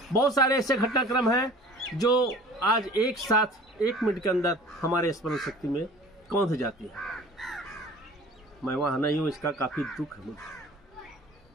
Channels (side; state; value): both; normal; correlation 0.45